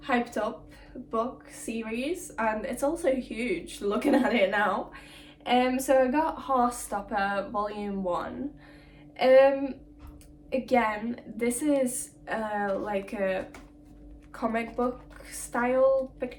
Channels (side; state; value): both; identical; correlation 1.00